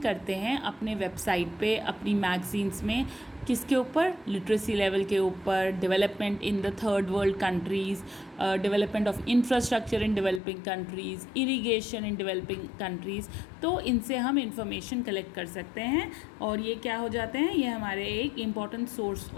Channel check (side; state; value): right; drops out; at 10.4 s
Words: करते हैं अपने वेबसाइट पे, अपनी मैगजीन्स में, किसके ऊपर? लिटरेसी लेवल के ऊपर, development in the third world countries, development of infrastructure in developing countries, irrigation in developing countries. तो इनसे हम इंफॉर्मेशन कलेक्ट कर सकते हैं और ये क्या हो जाते हैं, ये हमारे एक important source